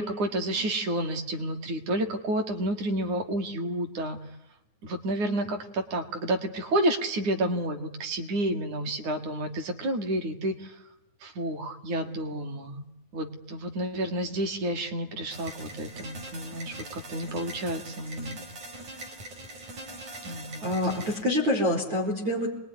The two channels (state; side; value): late; left; 9.5 ms